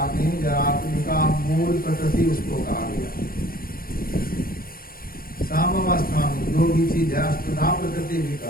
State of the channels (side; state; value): right; late; 0.42 ms